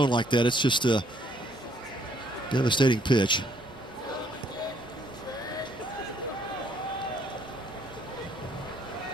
like that, it's just a devastating pitch.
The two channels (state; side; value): normal; both; correlation 0.66